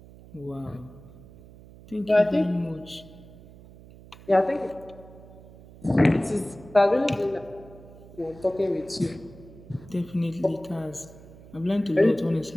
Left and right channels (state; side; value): noise; right; hum, 20 dB below the sound